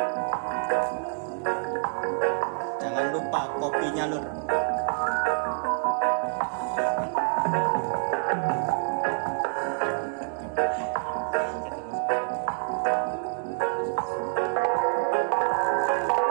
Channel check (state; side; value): silent; left; digital silence